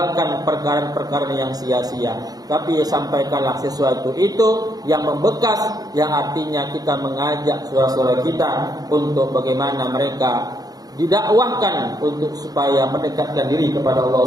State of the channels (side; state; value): left; late; 0.18 ms